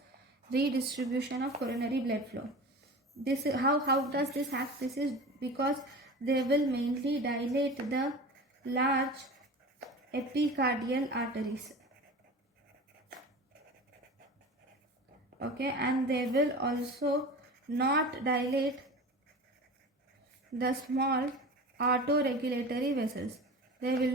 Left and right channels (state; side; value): normal; both; correlation 0.34